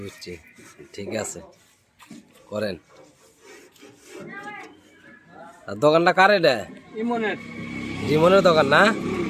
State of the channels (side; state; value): both; identical; correlation 1.00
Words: বুঝছি, ঠিক আছে করেন। আর দোকানটা কার এটা? ইমনের। রিমনের দোকান না?